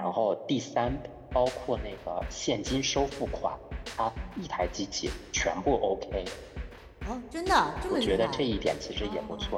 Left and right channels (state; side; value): identical; both; correlation 1.00